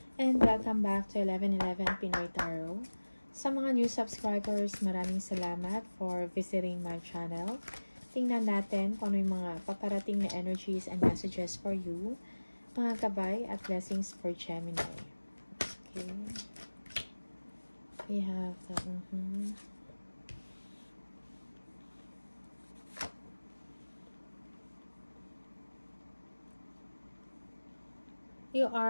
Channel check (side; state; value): both; inverted; correlation -1.00